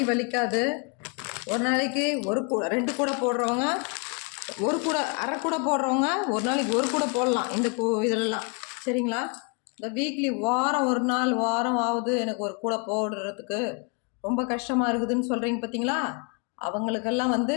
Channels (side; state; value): right; quieter; 34.6 dB